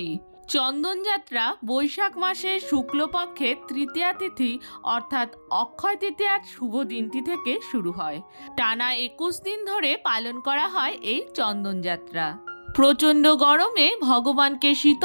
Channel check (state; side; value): inverted; both; correlation -1.00